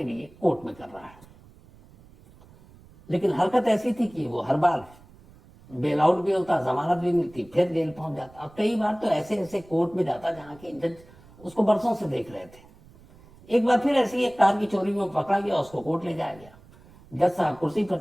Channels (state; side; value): noise; right; rumble, 24 dB below the sound